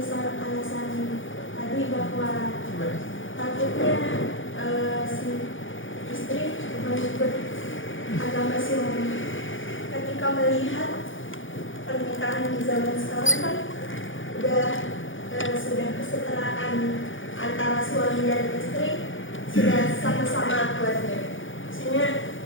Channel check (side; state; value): right; late; 0.57 ms